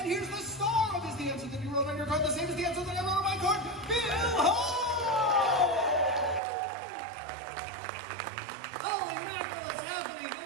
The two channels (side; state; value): left; drops out; at 6.4 s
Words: here's the star of Is the Answer That You Wrote on Your Card the Same as the Answer That I Wrote on My Card, Bill Hall! Holy mackerel, it's happening.